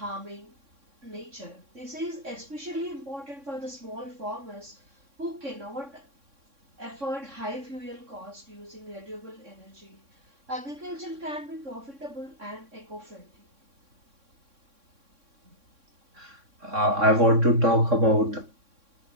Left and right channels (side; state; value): left; late; 3.6 ms